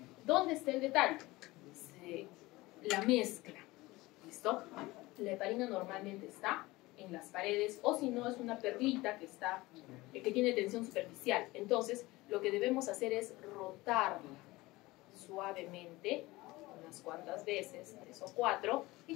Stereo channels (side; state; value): right; quieter; 20.3 dB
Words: ¿Dónde está el detalle? La mezcla. ¿Listo? La heparina normalmente está en las paredes o si no es una perlita que tiene tensión superficial. Entonces, lo que debemos hacer es rotarla suavemente unas cuantas veces, 3 o 4, y